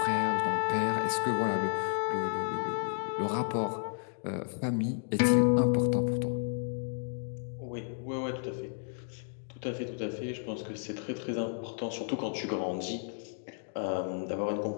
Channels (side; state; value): right; silent; digital silence